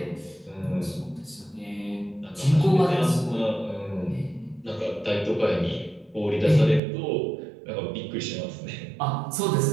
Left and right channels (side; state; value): left; drops out; at 6.8 s